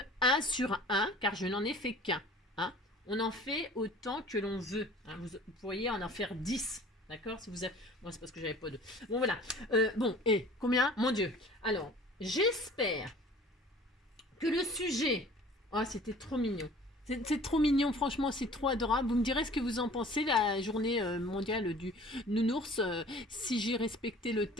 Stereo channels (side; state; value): both; normal; correlation 0.47